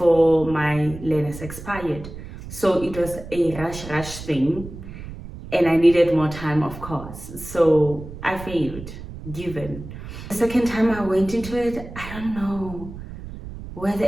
my learners expired. So it was a rush thing, and I needed more time, of course. So I failed, given. The second time I went into it, I don't know where the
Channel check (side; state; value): right; noise; rumble, 12 dB below the sound